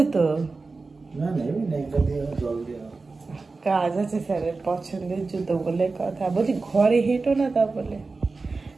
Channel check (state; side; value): quieter; left; 3.9 dB